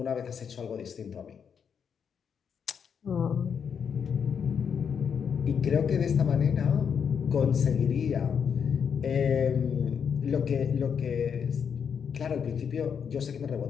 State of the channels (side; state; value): right; quieter; 7.1 dB